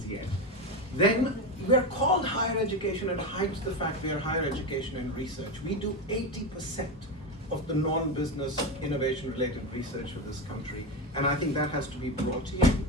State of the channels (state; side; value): normal; both; correlation 0.15